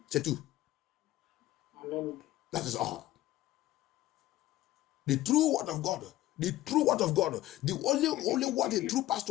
C'est tout. Amen. That is all. The true word of God. The true word of God. The only what a true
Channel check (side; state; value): right; quieter; 15.6 dB